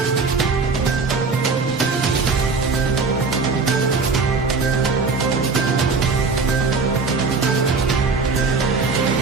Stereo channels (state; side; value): quieter; left; 4.4 dB